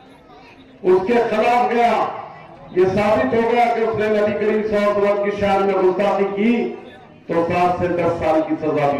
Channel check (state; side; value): identical; both; correlation 1.00